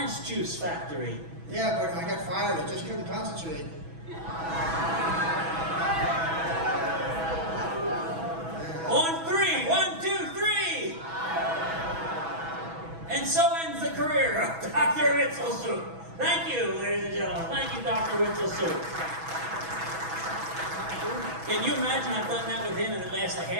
juice factory. Yeah, but I got fired. I just couldn't concentrate. On 3, 1, 2, 3. And so ends the career of Dr. Witzelsucht. Thank you, ladies and gentlemen. Thank you, Dr. Witzelsucht. Can you imagine I've done that with him and it lasts a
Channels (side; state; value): left; late; 6.1 ms